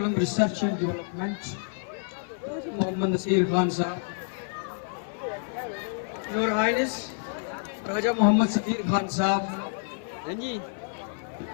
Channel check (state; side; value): silent; right; 55 dB below the other